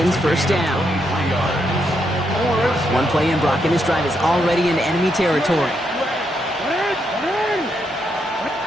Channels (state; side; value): normal; both; correlation 0.79